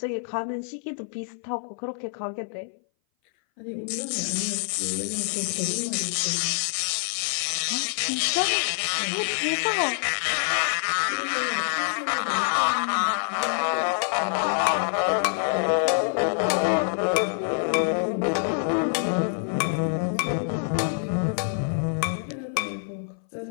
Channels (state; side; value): silent; right; 58 dB below the other